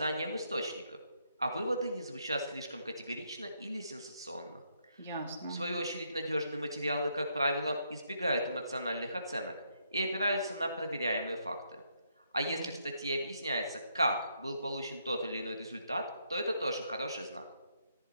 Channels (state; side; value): inverted; both; correlation -0.75